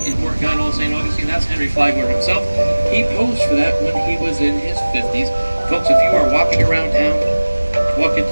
in Morgan, St. Augustine. That's Henry Flagler himself. He posed for that when he was in his 50s. Folks, if you are walking around town, walk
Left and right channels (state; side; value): inverted; both; correlation -1.00